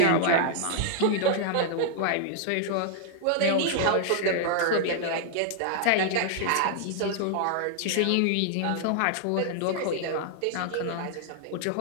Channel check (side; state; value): both; different; correlation -0.01